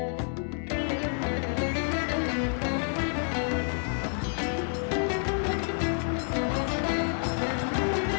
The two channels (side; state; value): right; silent; 58 dB below the other